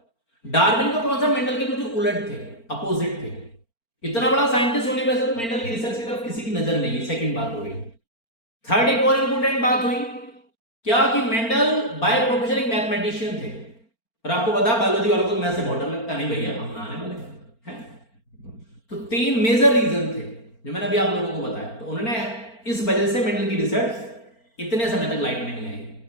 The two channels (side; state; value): right; late; 4.4 ms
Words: डार्विन का कॉन्सेप्ट मेंडल के बिल्कुल उलट थे, अपोजिट थे। इतना बड़ा साइंटिस्ट होने पर मेंडल की रिसर्च की तरफ किसी की नजर नहीं। सेकंड बात हो गई। थर्ड एक और इंपोर्टेंट बात हुई क्या कि मेंडल बाय प्रोफेशन एक मैथमेटिशियन थे, और आपको पता है बायोलॉजी वालों को मैथ से बहुत डर लगता नहीं, भैया हम ना आने वाले हैं। तो 3 मेजर रीजन थे जो मैंने अभी आप लोगों को बताया। तो उन्होंने इस वजह से मेंडल की रिसर्च इतने समय तक लाइट में नहीं आई।